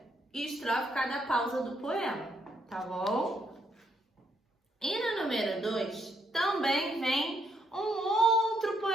E estrofe cada pausa do poema, tá bom? E no número 2, também vem um outro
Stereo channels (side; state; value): both; normal; correlation 0.74